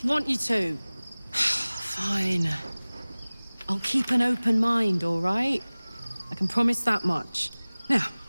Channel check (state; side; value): inverted; both; correlation -1.00